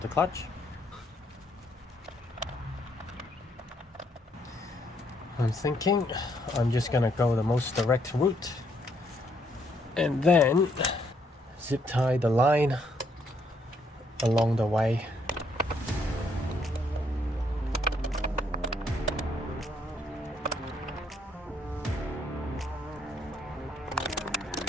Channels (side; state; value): both; normal; correlation 0.71